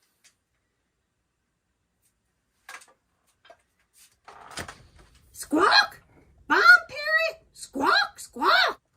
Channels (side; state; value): both; identical; correlation 1.00